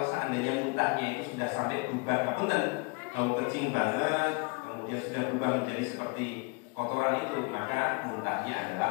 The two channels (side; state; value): right; quieter; 31.5 dB